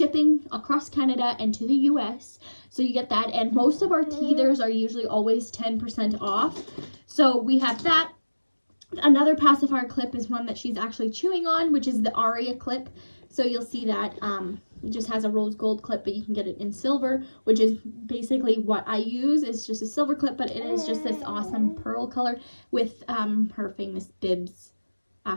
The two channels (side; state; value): both; inverted; correlation -1.00